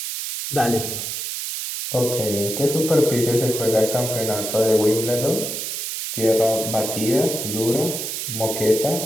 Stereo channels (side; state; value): right; noise; hiss, 4 dB below the sound